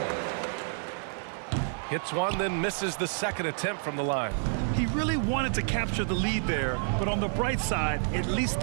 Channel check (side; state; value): left; silent; digital silence